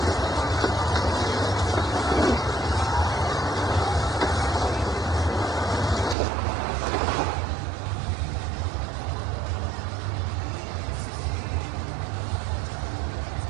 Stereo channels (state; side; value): drops out; left; at 6.2 s